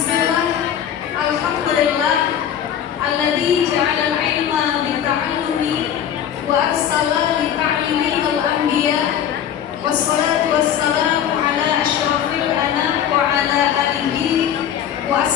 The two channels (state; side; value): quieter; right; 9.5 dB